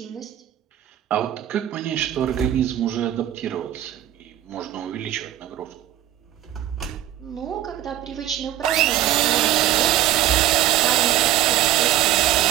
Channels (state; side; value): quieter; left; 12.7 dB